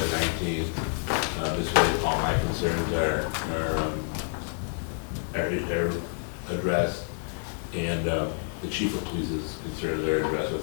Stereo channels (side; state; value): right; silent; 59 dB below the other